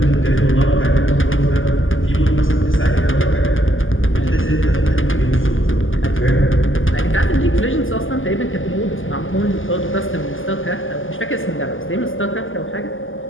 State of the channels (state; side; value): late; right; 0.58 ms